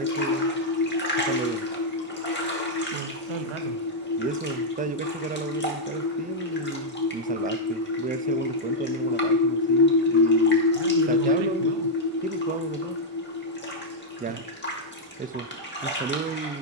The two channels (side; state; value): both; normal; correlation -0.04